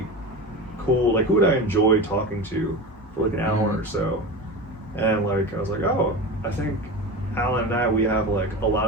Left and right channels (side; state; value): both; normal; correlation 0.27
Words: cool, who would I enjoy talking to for an hour or so, and I was like, I think Alan and I, we have a lot